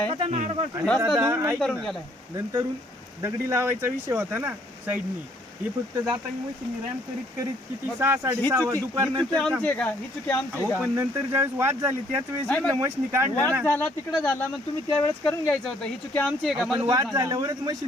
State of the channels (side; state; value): both; normal; correlation 0.65